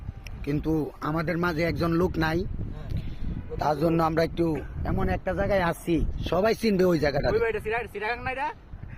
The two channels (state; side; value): identical; both; correlation 1.00